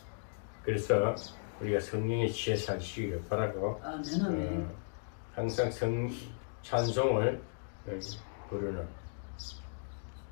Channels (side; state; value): right; silent; digital silence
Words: 그래서 우리가 성령에 취해 사시기를 바라고 항상 찬송을 부르는